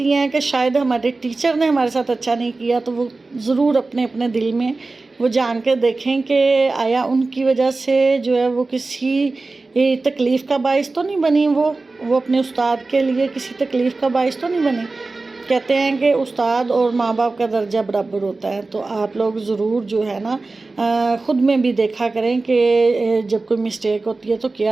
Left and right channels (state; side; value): quieter; left; 3.5 dB